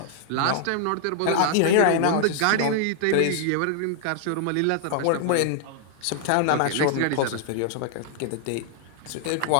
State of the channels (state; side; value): different; both; correlation 0.00